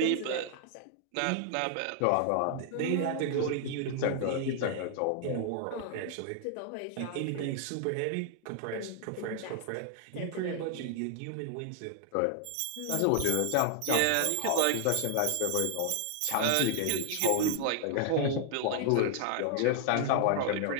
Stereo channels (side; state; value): both; different; correlation 0.00